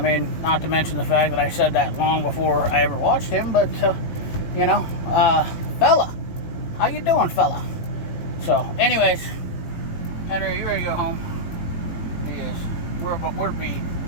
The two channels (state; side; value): late; right; 18 ms